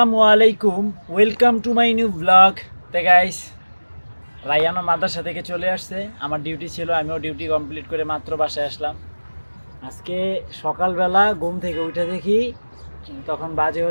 আলাইকুম, welcome to my new blog. তে গাইস, রায়ানও মাদ্রাসা থেকে চলে আসছে। আমার ডিউটি ছিল, আমিও ডিউটি কমপ্লিট করে মাত্র বাসায় আসলাম। আজকে সকালবেলা ঘুম থেকে উঠে দেখি তখন বাজে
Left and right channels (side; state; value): both; inverted; correlation -1.00